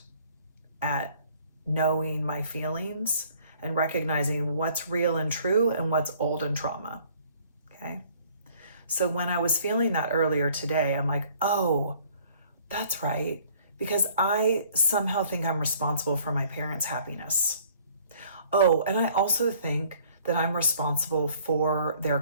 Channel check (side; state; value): both; inverted; correlation -0.57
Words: at knowing my feelings and recognizing what's real and true and what's old and trauma, okay? So when I was feeling that earlier today, I'm like, oh, that's right, because I somehow think I'm responsible for my parents' happiness. Oh, and I also think that I'm responsible for their